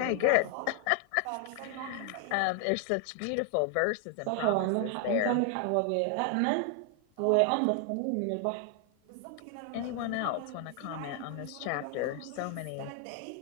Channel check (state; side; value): different; both; correlation 0.00